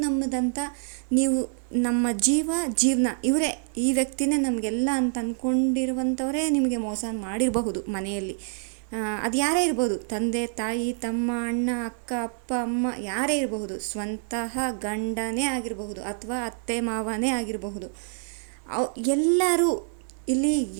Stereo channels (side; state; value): left; silent; 61 dB below the other